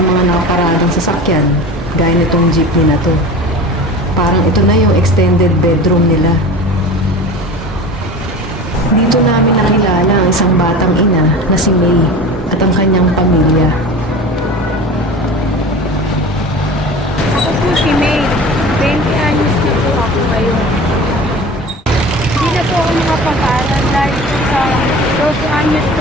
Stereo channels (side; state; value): both; normal; correlation 0.35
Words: mga nakaparadang sasakyan, gaya nitong jeepney na to. Parang ito na yung extended bedroom nila. Dito namin nakilala ang isang batang ina na si May at ang kanyang pamilya. Ako po si May. 20 anyos na po ako ngayon. Hindi na po ako makapag-aral dahil sa 12 anyos